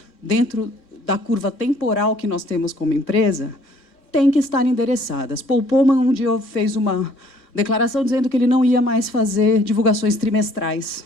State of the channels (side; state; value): right; late; 3.6 ms